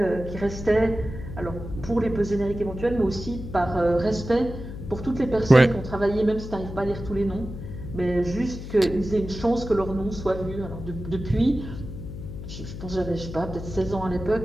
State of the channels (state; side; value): noise; left; hum, 10 dB below the sound